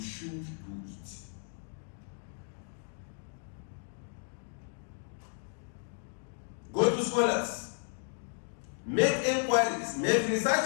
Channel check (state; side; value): silent; right; 55 dB below the other